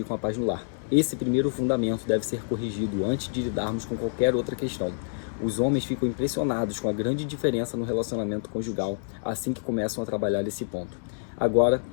a paz no lar. Esse primeiro fundamento deve ser corrigido antes de lidarmos com qualquer outra questão. Os homens ficam impressionados com a grande diferença no relacionamento conjugal assim que começam a trabalhar esse ponto. Agora,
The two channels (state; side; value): silent; right; digital silence